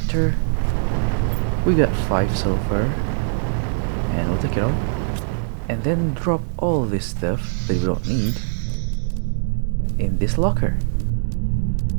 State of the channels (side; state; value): left; silent; 64 dB below the other